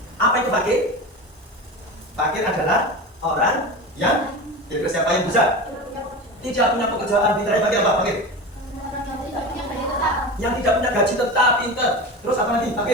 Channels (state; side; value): normal; both; correlation 0.27